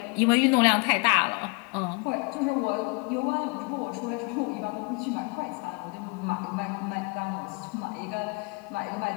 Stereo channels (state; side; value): quieter; right; 31.1 dB